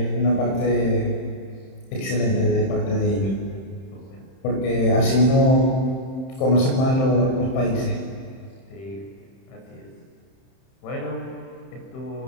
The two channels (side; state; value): right; late; 31 ms